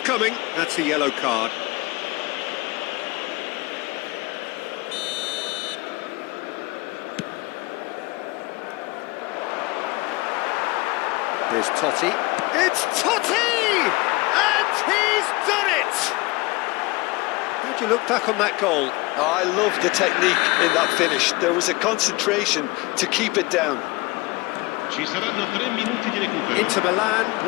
coming, that's a yellow card. Here's Totti. It's Totti! And he's done it! How'd you look back on that goal? Oh, I love the technique in that finish. There was a concentration to keep it down. Ci saranno 3 minuti di recupero. Inter Milan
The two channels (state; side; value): quieter; right; 23.5 dB